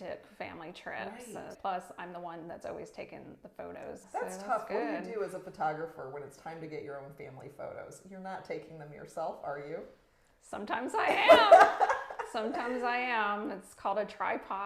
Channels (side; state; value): both; identical; correlation 1.00